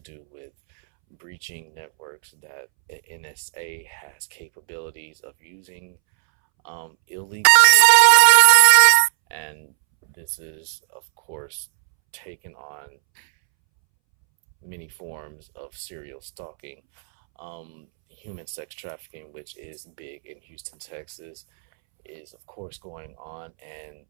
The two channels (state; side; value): silent; left; 65 dB below the other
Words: with breaching networks that the NSA has capabilities of using illegally, of course. And this is, of course, taken on many forms of serial stalking. Human sex trafficking, which is big in Houston, Texas, is of course going on, and